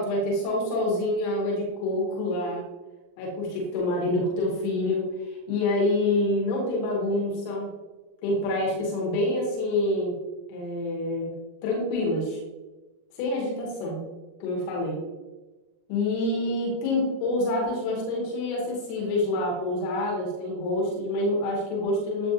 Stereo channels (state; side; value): late; right; 23 ms